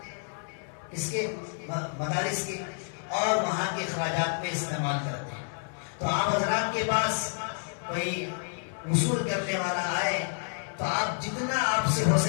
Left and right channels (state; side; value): silent; right; 58 dB below the other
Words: اس کے مدارس کے، اور وہاں کے اخراجات میں استعمال کرتے ہیں۔ تو آپ حضرات کے پاس کوئی وصول کرنے والا آئے تو آپ جتنا آپ سے ہو